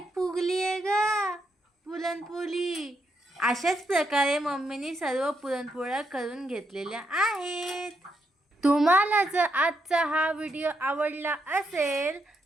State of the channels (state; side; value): normal; both; correlation 0.80